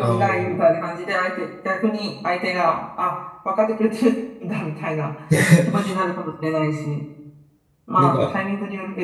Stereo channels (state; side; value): identical; both; correlation 1.00